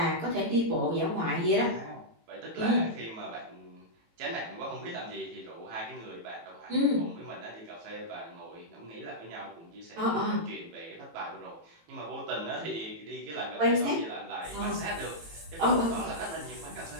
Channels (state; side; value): late; left; 18 ms